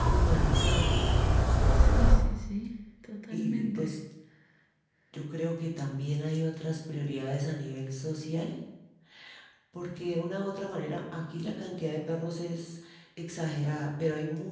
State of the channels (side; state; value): both; identical; correlation 1.00